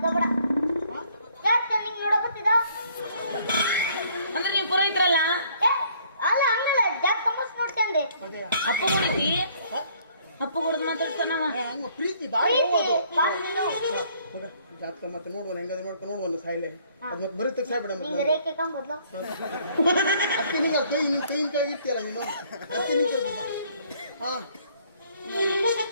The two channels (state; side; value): inverted; both; correlation -0.62